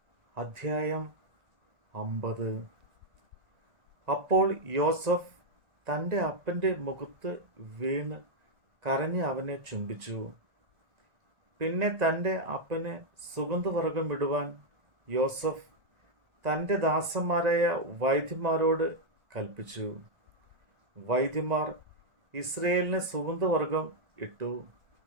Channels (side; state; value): left; late; 1.9 ms